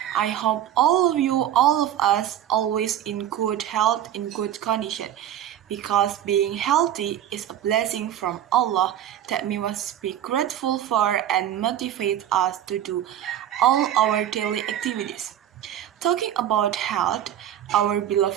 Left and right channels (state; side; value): quieter; left; 11.2 dB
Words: I hope all of us, always in good health, in good condition, because being healthy is a blessing from Allah that we must be grateful for and motivate us to do all our daily activities. Talking about health, our